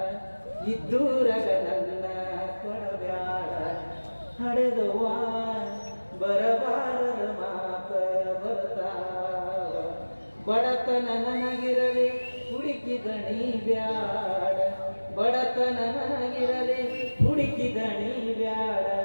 ಇದ್ದೂರಾಗ ನನ್ನ ಕೊಡಬೇಡ, ಹಡೆದವ್ವ ಬರಬಾರದ ಮಾತ ಬರ್ತಾವ, ಬಡತನ ನನಗಿರಲಿ ಹುಡುಕಿದಣಿ ಬ್ಯಾಡ, ಬಡತನ ನನಗಿರಲಿ ಹುಡುಕಿದಣಿ ಬ್ಯಾಡ,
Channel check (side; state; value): both; inverted; correlation -1.00